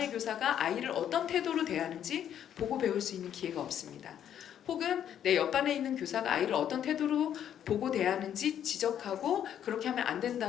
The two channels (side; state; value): right; quieter; 9.8 dB